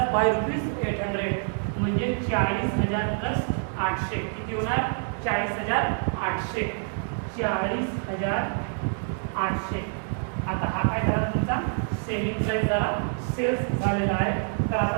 by ₹800. म्हणजे 40,000 प्लस 800 किती होणार 40,800. 40,800. आता हा काय झाला तुमचा सेलिंग प्राइस झाला सेल्स झालेला आहे. तर आता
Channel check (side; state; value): left; silent; 58 dB below the other